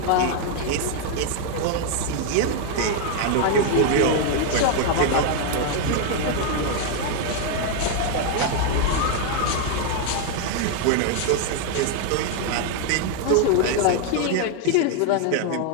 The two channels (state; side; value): different; both; correlation 0.00